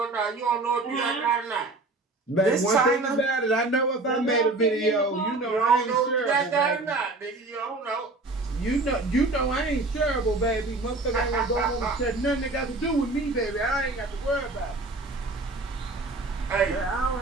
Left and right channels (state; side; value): quieter; left; 3.1 dB